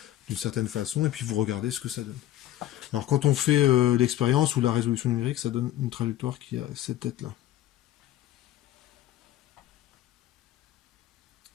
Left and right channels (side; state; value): right; quieter; 13.5 dB